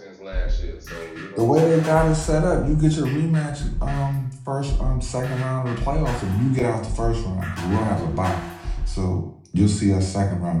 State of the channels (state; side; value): identical; both; correlation 1.00